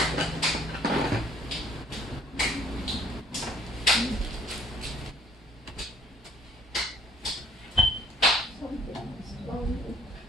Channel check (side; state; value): both; normal; correlation 0.61